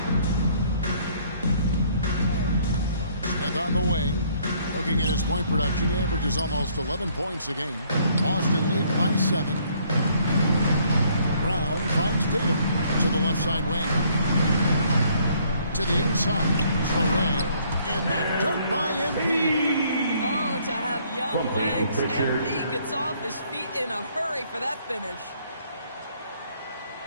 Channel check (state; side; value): inverted; both; correlation -0.64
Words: Smith on the wing. Looking at his point production, he averages almost 11 points a game. Boston lead by 7. Brown finds Tatum to the left side wing. To the inside. Traore. And the dunk by MP. Oh, to have young From legs. Pritchard. MP gets off his feet in a hurry for that finish.